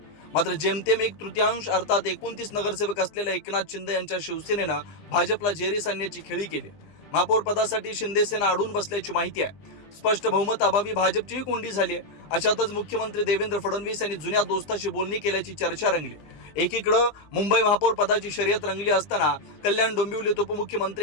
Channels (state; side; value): late; right; 20 ms